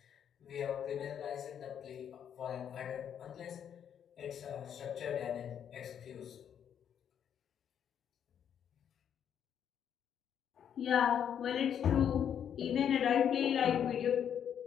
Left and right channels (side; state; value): right; quieter; 8.8 dB